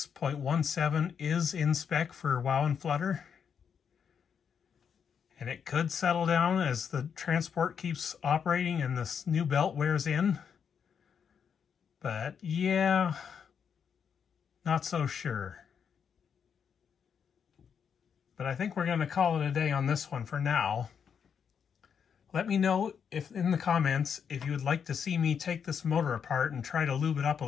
0.17 is in spec for WoW and Flutter. And it could settle down as the transport keeps operating and this new belt wears in. But yeah, not so sure. But I think we're going to call it a day on this one for now. Let me know if in the comments if you would like to see me take this motor apart and try to lube it up a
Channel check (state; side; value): quieter; right; 7.1 dB